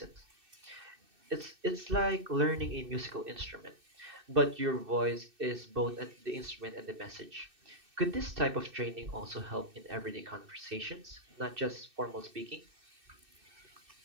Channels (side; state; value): left; late; 2.6 ms